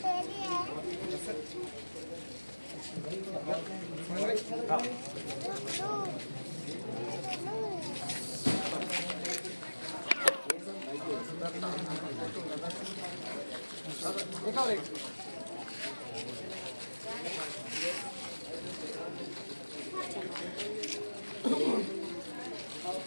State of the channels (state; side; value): inverted; both; correlation -1.00